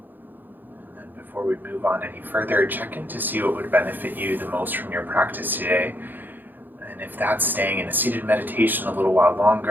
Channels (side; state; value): left; late; 0.089 ms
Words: Before we move on any further, check in to see what would benefit you the most from your practice today. And if that's staying in a seated meditation a little while